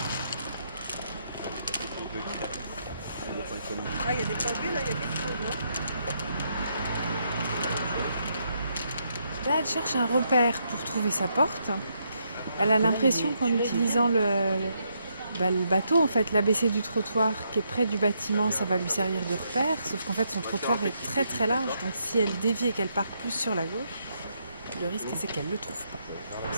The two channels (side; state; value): both; inverted; correlation -0.77